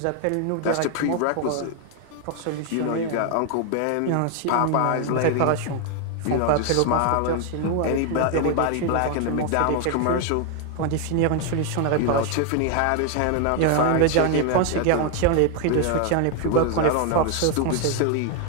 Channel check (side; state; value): both; different; correlation 0.01